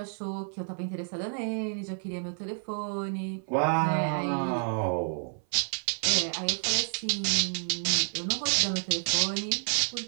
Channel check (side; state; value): left; silent; 58 dB below the other